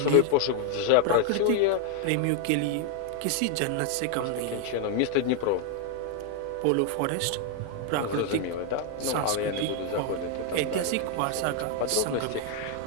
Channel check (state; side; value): different; both; correlation 0.00